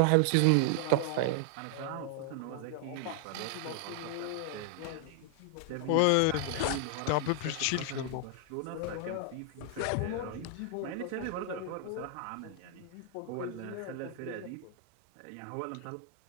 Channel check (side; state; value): both; different; correlation 0.00